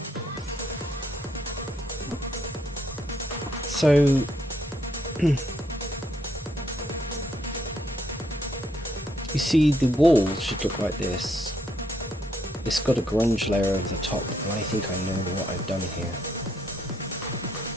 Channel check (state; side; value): normal; both; correlation 0.73